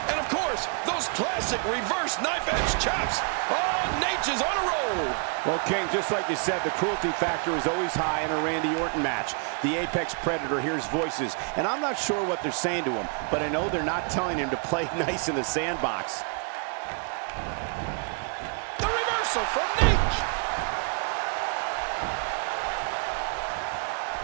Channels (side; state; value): left; quieter; 39.6 dB